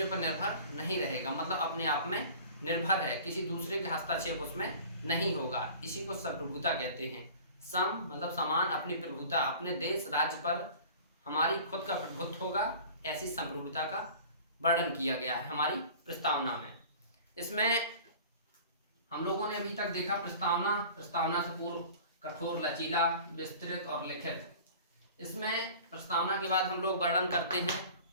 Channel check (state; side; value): inverted; both; correlation -0.43